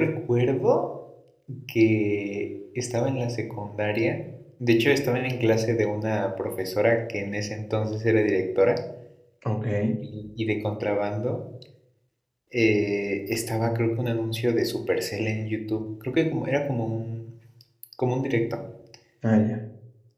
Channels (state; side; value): identical; both; correlation 1.00